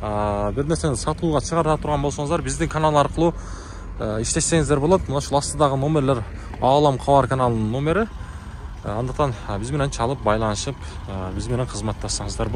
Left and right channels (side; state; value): both; identical; correlation 1.00